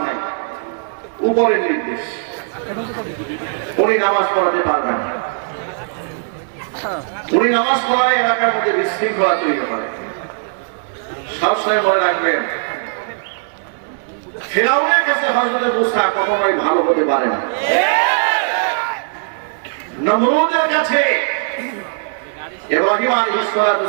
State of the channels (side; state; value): left; silent; 67 dB below the other